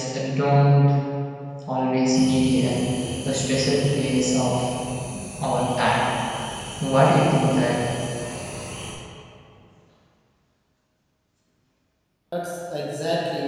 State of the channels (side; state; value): both; identical; correlation 1.00